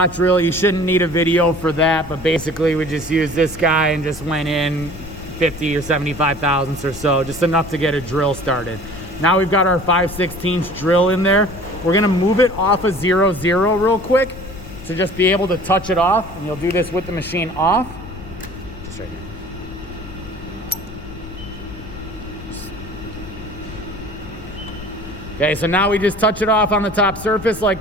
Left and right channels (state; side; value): noise; left; rumble, 14 dB below the sound